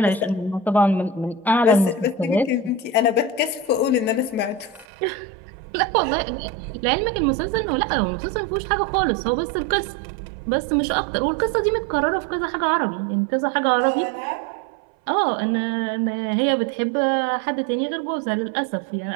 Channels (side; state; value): left; drops out; at 4.9 s